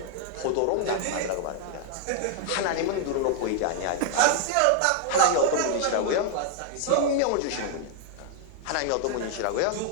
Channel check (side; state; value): both; different; correlation 0.00